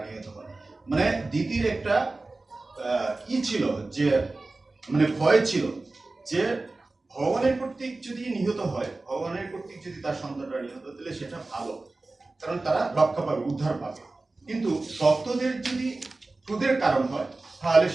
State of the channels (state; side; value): quieter; left; 3.3 dB